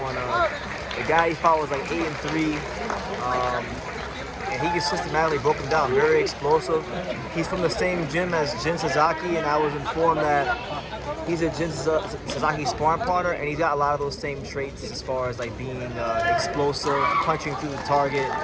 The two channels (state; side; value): identical; both; correlation 1.00